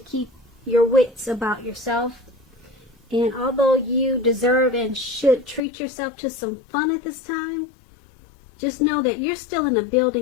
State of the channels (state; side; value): drops out; right; at 5.6 s